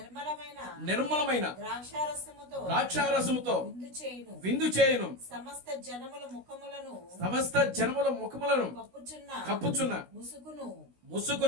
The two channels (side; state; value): left; late; 16 ms